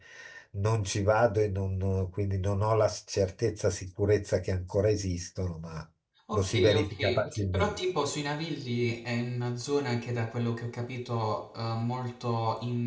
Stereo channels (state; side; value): identical; both; correlation 1.00